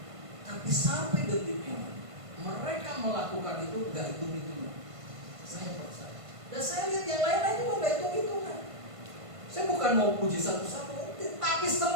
Tapi sampai detik ini mereka melakukan itu gak hitung-hitungan. Saya percaya. Dan saya lihat yang lain-lain juga gak hitung-hitungan. Saya bukan mau puji satu-satu, tapi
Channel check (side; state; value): left; late; 1.5 ms